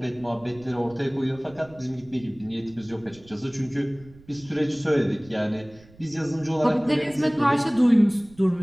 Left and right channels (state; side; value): noise; right; rumble, 24 dB below the sound